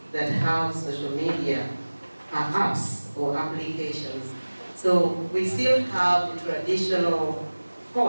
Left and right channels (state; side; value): inverted; both; correlation -1.00